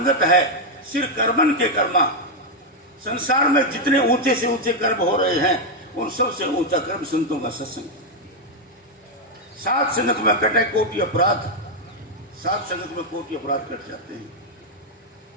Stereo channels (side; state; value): both; normal; correlation 0.01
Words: है सिर कर्मन के कर्मा। संसार में जितने ऊंचे से ऊंचे कर्म हो रहे हैं, उन सबसे ऊंचा कर्म संतों का सत्संग। साध संगत में कटे कोटि अपराध, साध संगत में कोटि अपराध कट जाते हैं।